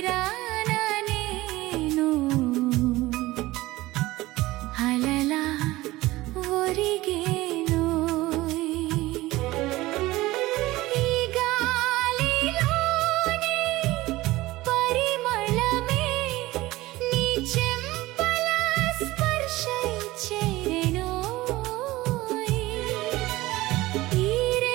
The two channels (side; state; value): left; quieter; 18.5 dB